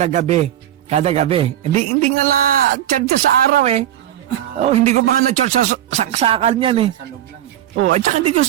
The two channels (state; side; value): quieter; left; 12.1 dB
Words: gabi. Kada gabi. Hindi nga na charge sa araw eh. Hindi ko pa nga na-charge sa saksakan yan eh. Sa loob lang. At saka hindi ko